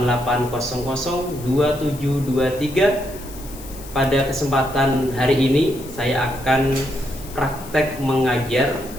Pada kesempatan hari ini saya akan praktek mengajar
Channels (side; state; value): left; noise; hiss, 17 dB below the sound